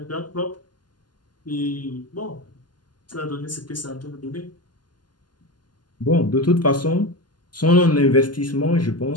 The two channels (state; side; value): late; right; 0.71 ms